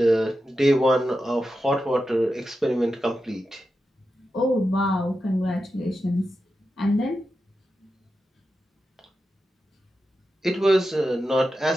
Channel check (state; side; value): normal; both; correlation 0.90